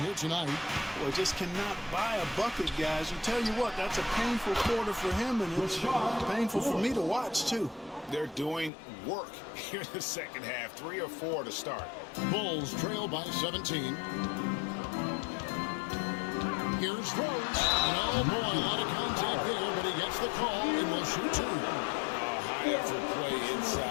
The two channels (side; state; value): right; drops out; at 8.7 s